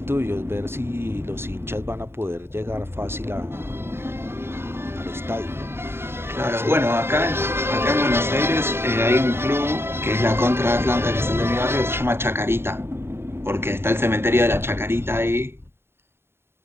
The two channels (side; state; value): left; late; 0.11 ms